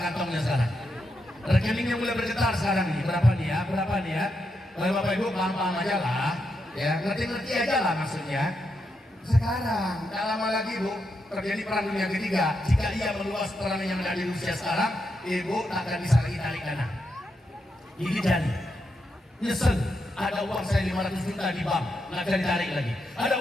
sekarang. Rekeningnya mulai bergetar sekarang nih. Berapa nih ya? Berapa nih ya? Kalau Bapak Ibu paham-paham aja lah. Ya ngerti-ngerti aja lah maksudnya. Sekarang, tak lama lagi Bu, terjadi perang dunia ketiga. Jika ia meluas perang yang ada di Rusia sekarang, Ibu akan bisa lagi tarik dana. Gigit jari. Nyesel, ada uang saya 500 juta di bank, nggak bisa ditarik lagi. Ada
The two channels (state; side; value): normal; both; correlation 0.83